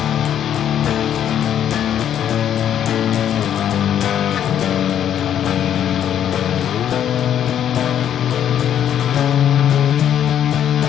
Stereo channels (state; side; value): quieter; right; 9.9 dB